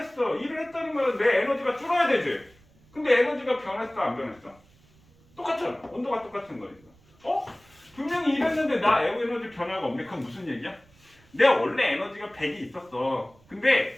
1을 했다는 말은 내 에너지가 줄어야 되지. 근데 에너지가 변했어 안 변했어? 똑같잖아. 온도가 똑같은 거니까. 분명히 1 했는데 나 에너지 변화가 없네. 그건 무슨 얘기야? 내가 원래 에너지가 100이 있었어.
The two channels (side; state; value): right; noise; rumble, 29 dB below the sound